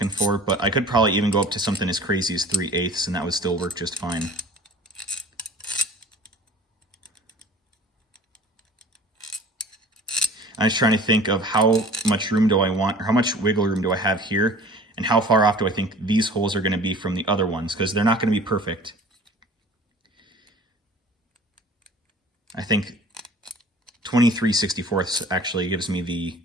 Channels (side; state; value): both; normal; correlation 0.45